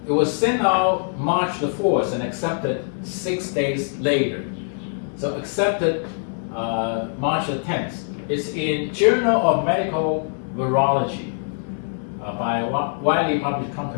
was sent out March the 4th and accepted 6 days later. So accepted March the 10th. It's in Journal of Medical Virology by a widely published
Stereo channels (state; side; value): silent; right; 60 dB below the other